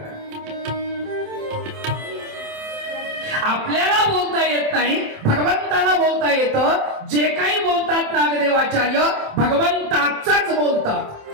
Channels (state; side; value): late; left; 27 ms